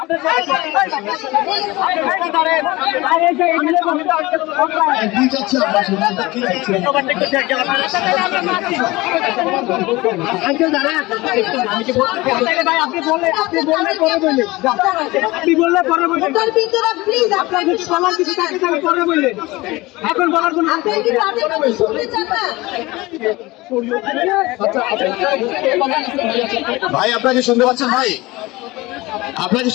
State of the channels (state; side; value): quieter; right; 20.7 dB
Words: প্লিজ আপনাকে সবার কিছু থাকে আমি পরে বললে এখন বলার কোনো আপনি কি তাদের কথা শুনতে চান না? ভাই আপনাকে শুনতে পাচ্ছেন? ভাই আপনাকে